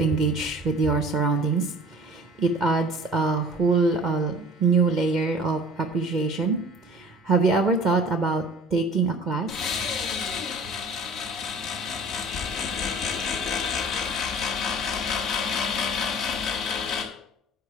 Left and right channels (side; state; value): both; normal; correlation 0.45